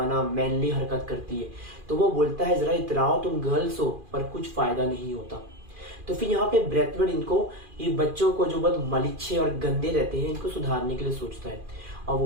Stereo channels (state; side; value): late; left; 2.4 ms